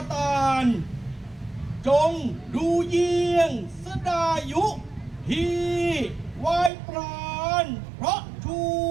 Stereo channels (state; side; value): drops out; left; at 6.7 s